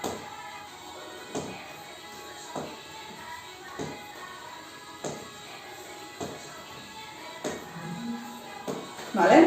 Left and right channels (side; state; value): both; identical; correlation 1.00